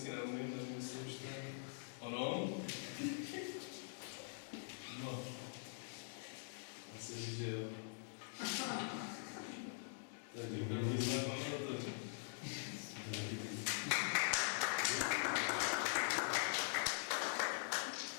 neumím, nevím, jestli už to je ono. No, asi říct, že jo. Takže první znak máme to.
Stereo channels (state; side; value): silent; right; digital silence